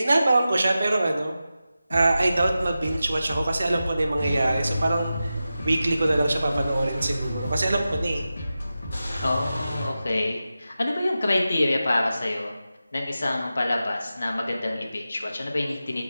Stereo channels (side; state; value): both; inverted; correlation -0.93